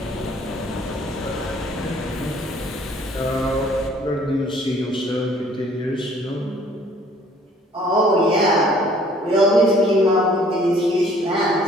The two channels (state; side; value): normal; both; correlation 0.57